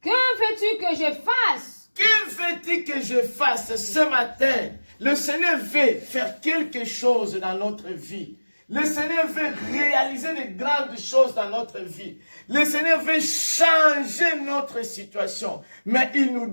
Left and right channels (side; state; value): both; inverted; correlation -1.00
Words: Que veux-tu que je fasse? Que veux-tu que je fasse ce matin? Le Seigneur veut faire quelque chose dans notre vie. Le Seigneur veut réaliser de grandes choses dans notre vie. Le Seigneur veut changer notre situation. Mais il nous